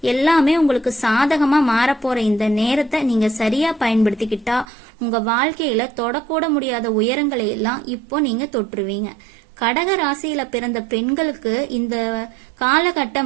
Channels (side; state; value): left; drops out; at 4.7 s